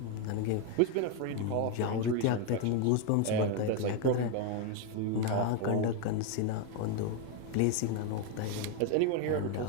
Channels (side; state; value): both; different; correlation 0.01